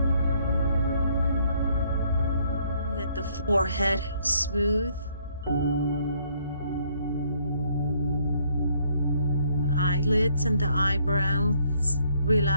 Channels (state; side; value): inverted; both; correlation -0.66